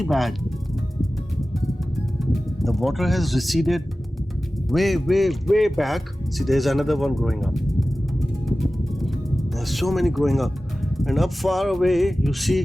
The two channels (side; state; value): both; normal; correlation 0.96